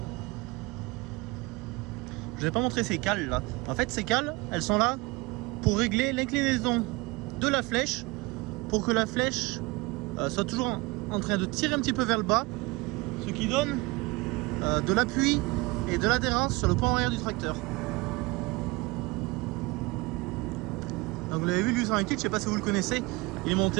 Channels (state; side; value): quieter; left; 23.8 dB